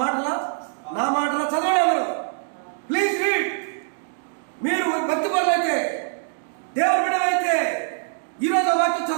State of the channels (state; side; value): silent; left; 63 dB below the other